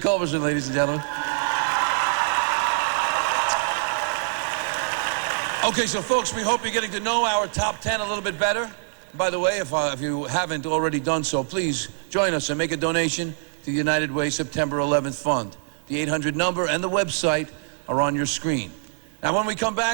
ladies and gentlemen. Okay, so folks, we hope you're getting to know our top 10 a little bit better. By the way, if you haven't already done so, please join us and make a donation to the United Way September 11th Fund. The 800 number and the website are on your screen. Now, when we come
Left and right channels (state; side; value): silent; left; digital silence